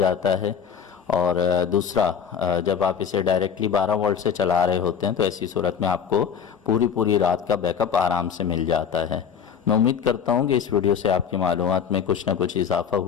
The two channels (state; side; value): quieter; right; 7.5 dB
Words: है, और दूसरा जब आप इसे डायरेक्टली 12 वोल्ट से चला रहे होते हैं तो ऐसी सूरत में आपको पूरी रात का बैकअप आराम से मिल जाता है। मैं उम्मीद करता हूँ कि इस वीडियो से आपकी मालूमात में कुछ ना कुछ इजाफा